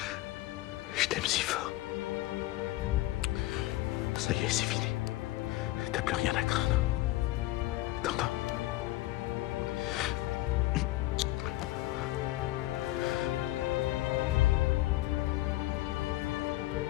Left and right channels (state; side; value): quieter; right; 17.4 dB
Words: je t'aime si fort. Ça y est, c'est fini. T'as plus rien à craindre. T'entends?